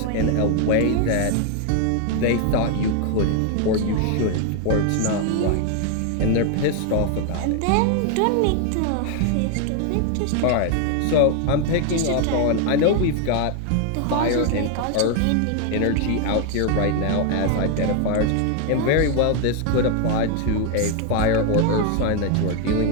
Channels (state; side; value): different; both; correlation 0.01